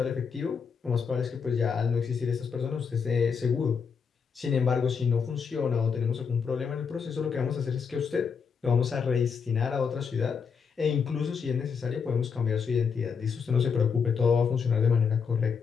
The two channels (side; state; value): right; quieter; 6.1 dB